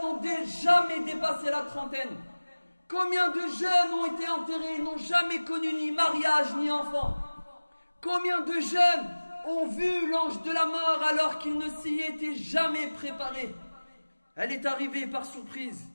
n'ont jamais dépassé la trentaine? Combien de jeunes ont été enterrés, n'ont jamais connu ni mariage ni enfant? Combien de jeunes ont vu l'ange de la mort alors qu'ils ne s'y étaient jamais préparés? Elle est arrivée par surprise.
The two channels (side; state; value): both; inverted; correlation -1.00